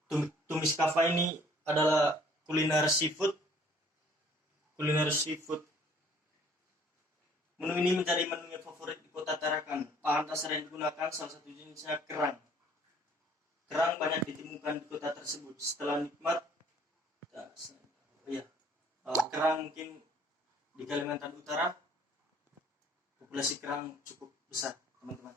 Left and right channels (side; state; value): both; normal; correlation 0.57